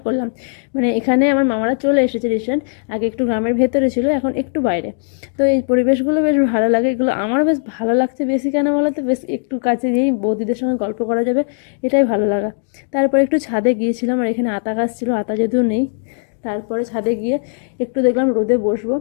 করলাম। মানে এখানে আমার মামারা চলে এসেছে রিসেন্ট। আগে একটু গ্রামের ভেতরে ছিল, এখন একটু বাইরে। তো এই পরিবেশগুলো বেশ ভালো লাগে, এগুলো আমারও বেশ ভালো লাগছে। বেশি কেন বলো তো, বেশ একটু কাছে গিয়েই বৌদিদের সঙ্গে গল্প করা যাবে, এটাই ভালো লাগা। তারপরে একটু ছাদে গিয়েছিলাম, আর এখানে আতা গাছ ছিল, আতা যদিও নেই। তারপরে ছাদে গিয়ে একটু দেখলাম রোদে বসবো।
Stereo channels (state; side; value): silent; right; digital silence